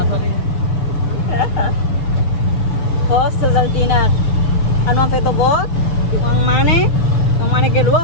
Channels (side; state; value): right; late; 7.0 ms